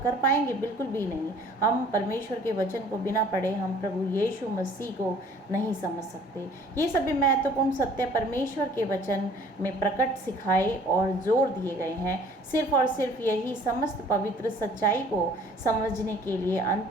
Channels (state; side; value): normal; both; correlation 0.53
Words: पाएंगे? बिल्कुल भी नहीं। हम परमेश्वर के वचन को बिना पढ़े हम प्रभु यीशु मसीह को नहीं समझ सकते। ये सभी महत्वपूर्ण सत्य परमेश्वर के वचन में प्रकट, सिखाए और जोर दिए गए हैं। सिर्फ और सिर्फ यही समस्त पवित्र सच्चाई को समझने के लिए